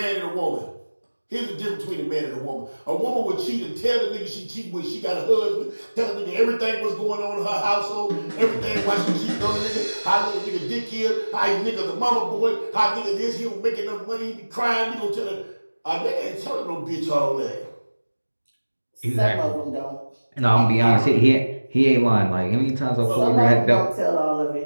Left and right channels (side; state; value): both; inverted; correlation -1.00